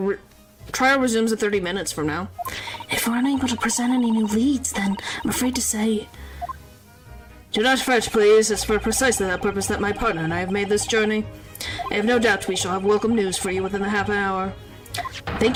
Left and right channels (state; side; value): identical; both; correlation 1.00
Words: trial resumes in 30 minutes from now. If we're unable to present any new leads, then I'm afraid to say... Do not fret, please. It's for precisely that purpose that my partner and I have made this journey. I have no doubt we shall have welcome news for you within the half an hour.